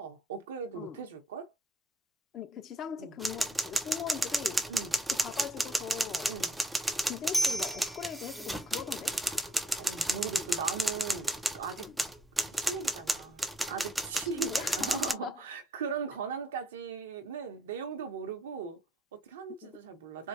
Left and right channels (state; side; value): normal; both; correlation 0.68